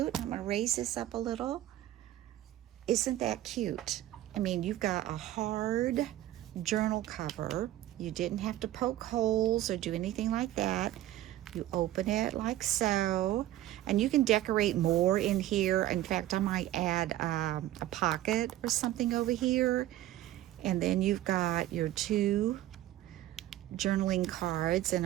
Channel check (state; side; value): quieter; left; 14.3 dB